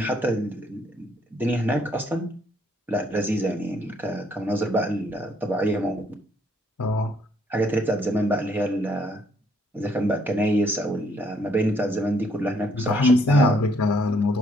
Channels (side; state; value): both; normal; correlation 0.68